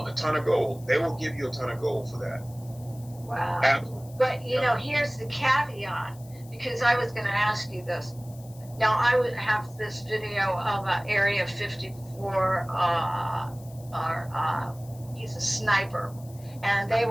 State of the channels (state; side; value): noise; left; hiss, 23 dB below the sound